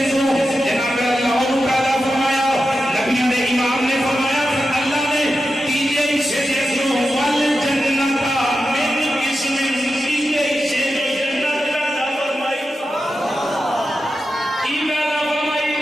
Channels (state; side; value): normal; both; correlation 0.90